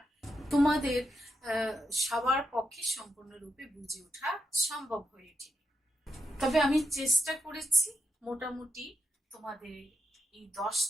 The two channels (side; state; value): both; normal; correlation 0.84